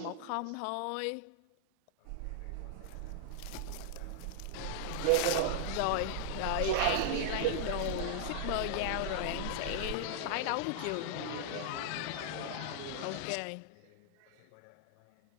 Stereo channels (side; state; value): both; different; correlation -0.01